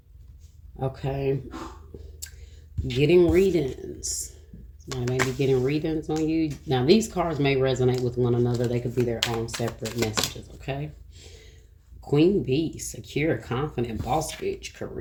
Okay. Getting readings. Somebody may be getting readings on you. Now, these cards may resonate with one another. They could be their own separate messages, okay? Queen Bee, secure, confident, boss bitch,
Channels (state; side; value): identical; both; correlation 1.00